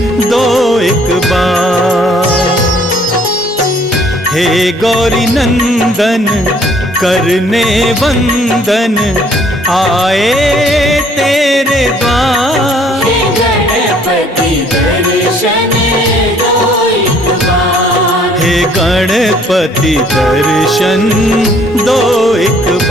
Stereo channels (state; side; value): normal; both; correlation 0.60